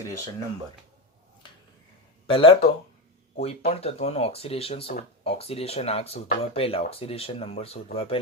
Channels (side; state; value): both; normal; correlation 0.16